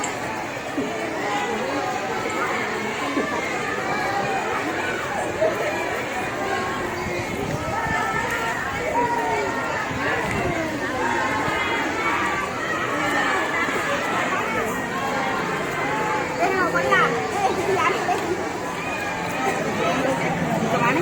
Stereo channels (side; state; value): both; identical; correlation 1.00